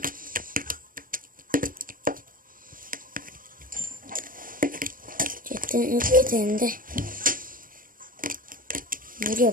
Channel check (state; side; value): late; left; 0.40 ms